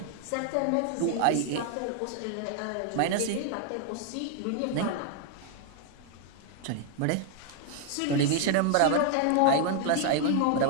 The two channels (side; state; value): both; different; correlation 0.00